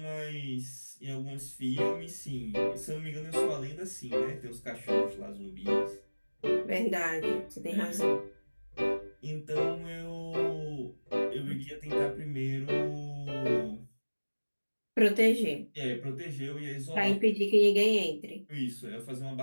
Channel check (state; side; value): inverted; both; correlation -1.00